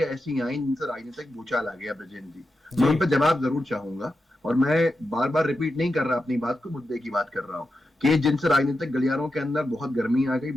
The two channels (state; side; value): normal; both; correlation 0.89